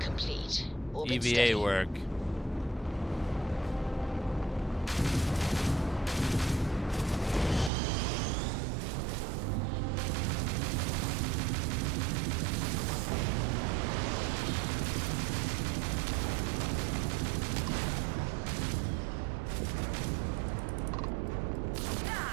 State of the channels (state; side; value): drops out; left; at 7.7 s